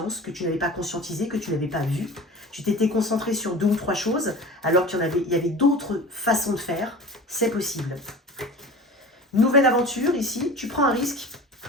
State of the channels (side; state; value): both; normal; correlation 0.37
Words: que tu n'avais pas conscientisé, que tu n'avais pas vu. Tu t'étais concentré sur 2 ou 3 choses, alors qu'il y avait d'autres façons de faire. C'est possible. Nouvelle aventure ici, tu prends un risque.